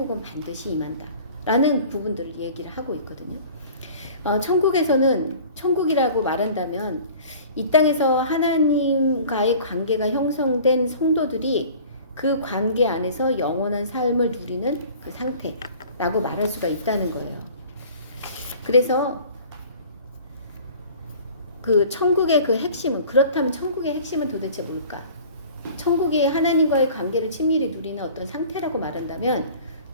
반드시 임한다. 라는 부분들을 얘기를 하고 있거든요. 천국에서는 천국이라고 말한다면 이 땅에서 하나님과의 관계가 형성된 성도들이 그 관계 안에서 영원한 삶을 누리는 그 상태라고 말할 수가 있다는 거예요. 그래서 그 천국의 그 핵심은 그렇다면 천국의 핵심은 도대체 뭘까? 천국이 하나님과의 관계를 친밀히 누리는 어떤 상태라고 말한다면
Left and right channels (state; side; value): inverted; both; correlation -0.46